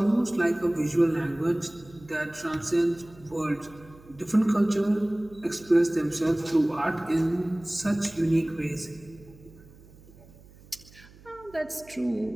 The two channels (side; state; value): right; noise; hum, 23 dB below the sound